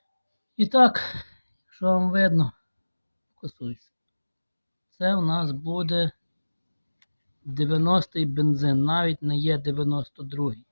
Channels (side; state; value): both; inverted; correlation -1.00